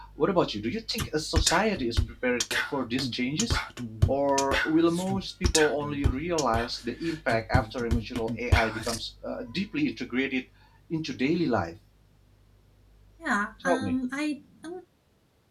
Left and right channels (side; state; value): both; identical; correlation 1.00